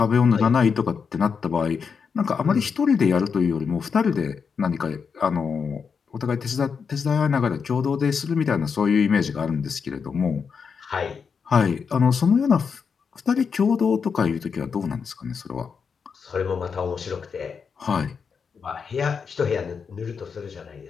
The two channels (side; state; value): right; quieter; 6.0 dB